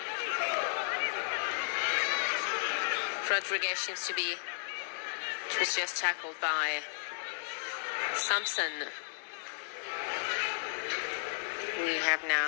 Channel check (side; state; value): right; silent; digital silence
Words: Rodriguez seems to be, was just tackled by Sampson. We have